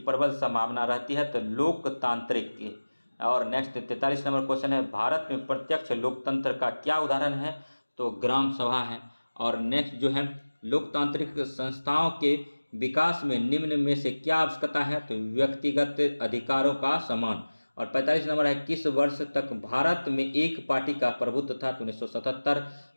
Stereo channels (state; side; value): inverted; both; correlation -1.00